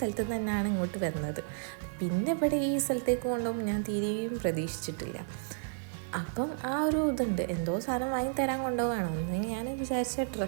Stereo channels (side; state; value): left; silent; 55 dB below the other